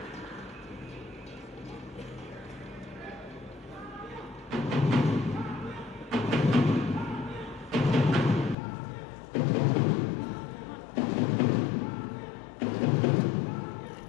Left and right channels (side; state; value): right; drops out; at 8.6 s